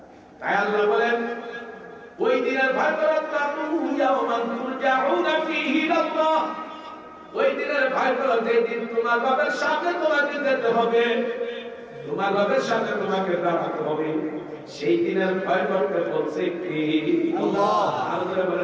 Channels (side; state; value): both; identical; correlation 1.00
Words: তাই আল্লাহ বলেন, ওই দিনের ভয় করো, ওই দিনের ভয় করো যেদিন তোমার বাবার সামনে তোমাকে যেতে হবে, তোমার বাবার সামনে তোমাকে দাঁড়াতে হবে। সেই দিনের ভয় করতে বলছে কি? আল্লাহ। আল্লাহ